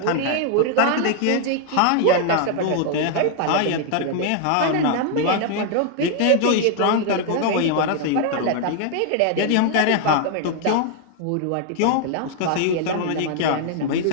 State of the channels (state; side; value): different; both; correlation 0.00